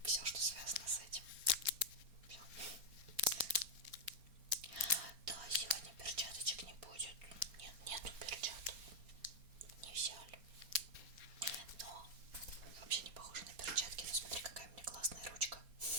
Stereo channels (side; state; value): left; late; 4.3 ms